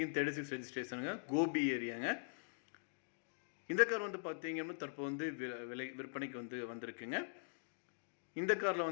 ரெஜிஸ்ட்ரேஷனுங்க. கோபி ஏரியாங்க. இந்த கார் பார்த்தீங்க அப்படின்னா தற்போது விற்பனைக்கு வந்திருக்குங்க. இந்த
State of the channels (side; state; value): right; silent; digital silence